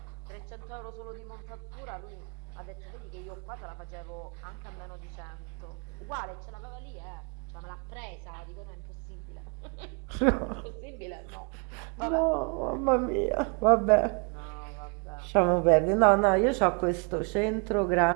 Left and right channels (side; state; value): left; quieter; 36.0 dB